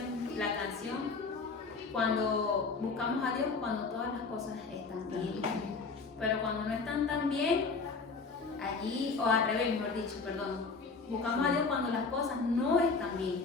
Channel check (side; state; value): right; quieter; 4.4 dB